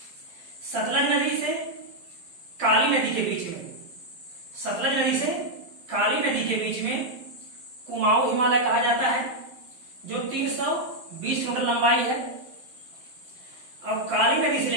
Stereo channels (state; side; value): late; left; 12 ms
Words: सतलज नदी से काली नदी के बीच में, सतलज नदी से काली नदी के बीच में कुमाऊं हिमालय कहा जाता है, जो 320 किलोमीटर लंबाई है। और काली नदी से